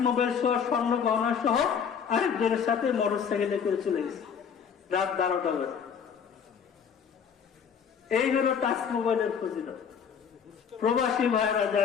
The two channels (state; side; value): quieter; right; 7.1 dB